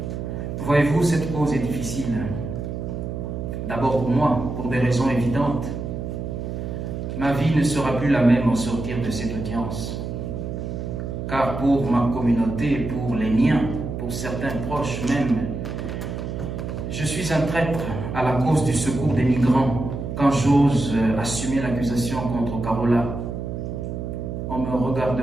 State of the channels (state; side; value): noise; right; hum, 5 dB below the sound